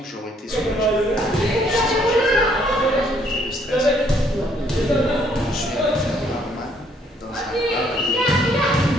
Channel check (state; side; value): normal; both; correlation 0.66